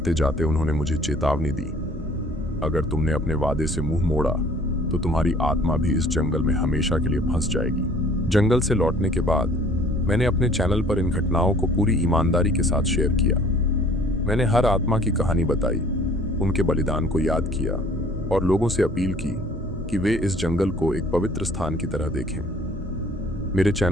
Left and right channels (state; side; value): normal; both; correlation 0.54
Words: जाते उन्होंने मुझे चेतावनी दी, अगर तुमने अपने वादे से मुंह मोड़ा तो तुम्हारी आत्मा भी इस जंगल में हमेशा के लिए फंस जाएगी। जंगल से लौटने के बाद मैंने अपने चैनल पर इन घटनाओं को पूरी ईमानदारी के साथ शेयर किया। मैंने हर आत्मा की कहानी बताई, उनके बलिदान को याद किया और लोगों से अपील की कि वे इस जंगल को एक पवित्र स्थान की तरह देखें। मेरे